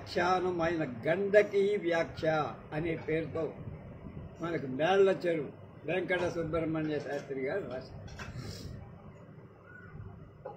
ఆయన గండకీ వ్యాఖ్య అనే పేరుతో మనకు మేళ్ల చెరువు వెంకట సుబ్రహ్మణ్య శాస్త్రి గారు రాశారు.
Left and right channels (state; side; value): identical; both; correlation 1.00